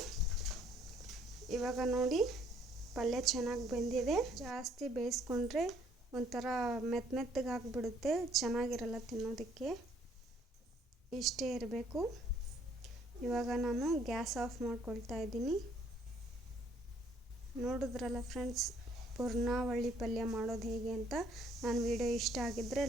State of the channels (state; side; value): normal; both; correlation 0.64